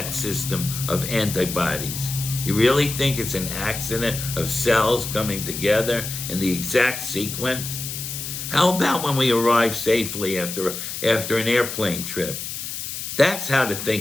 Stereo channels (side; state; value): left; noise; hiss, 6 dB below the sound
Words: system of antibodies? You really think it's an accident of cells coming together in the exact sequence? How about when we arrive safely after an airplane trip? That's how to